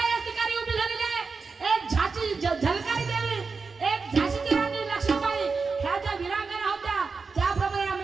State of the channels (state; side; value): quieter; left; 4.7 dB